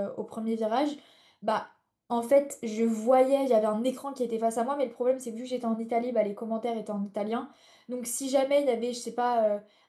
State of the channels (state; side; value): identical; both; correlation 1.00